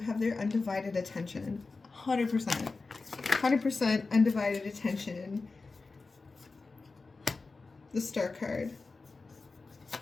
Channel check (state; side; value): quieter; right; 3.9 dB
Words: their undivided attention. 100%. 100% undivided attention. The Star card.